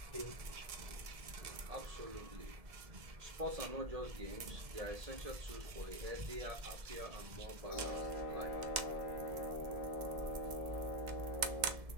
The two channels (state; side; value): late; left; 1.7 ms